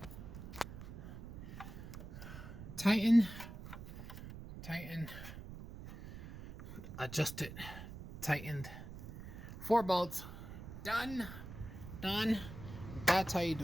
Tighten. Tighten. Adjust it. Tightened. 4 bolts. Done. Done. That's how you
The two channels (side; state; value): right; noise; rumble, 11 dB below the sound